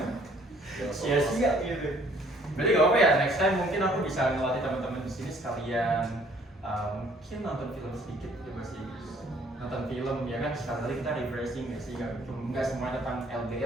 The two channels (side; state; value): both; normal; correlation 0.60